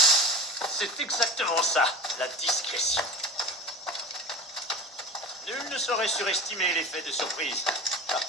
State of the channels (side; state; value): both; normal; correlation 0.32